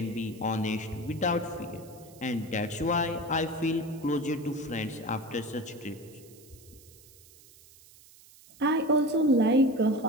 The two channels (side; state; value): right; noise; hiss, 24 dB below the sound